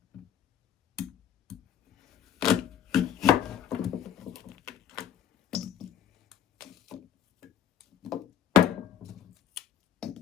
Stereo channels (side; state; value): right; quieter; 9.5 dB